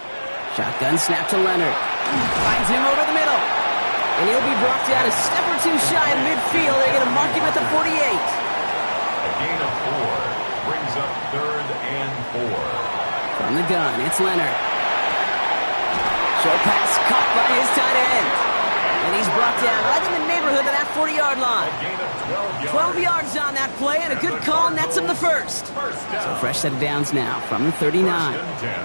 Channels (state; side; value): inverted; both; correlation -1.00